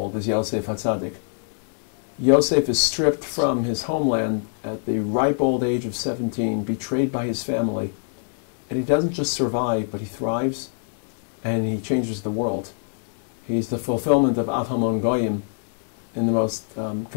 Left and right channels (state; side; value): silent; right; digital silence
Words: as Yosef HaTzadik. Yosef is stripped from his homeland at the ripe old age of 17, betrayed by his family, and he doesn't just survive, but he thrives, and he changes the world. He's the fulfillment of Av Hamon Goyim in the most